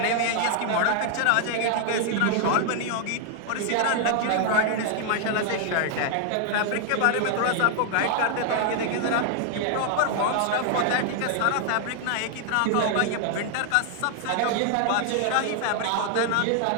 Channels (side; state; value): both; different; correlation 0.00